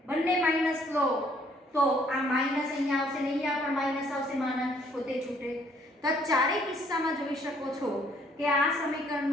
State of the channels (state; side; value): normal; both; correlation 0.64